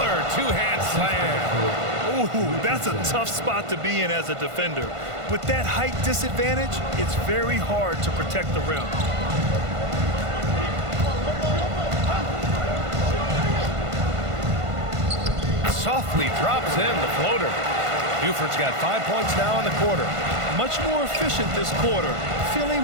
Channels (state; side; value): late; left; 1.5 ms